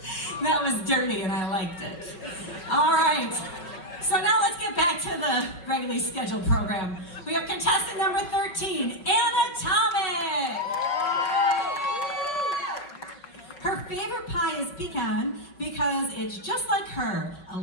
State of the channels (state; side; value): late; right; 5.6 ms